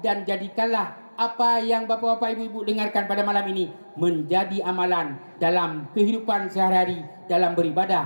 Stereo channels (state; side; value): inverted; both; correlation -1.00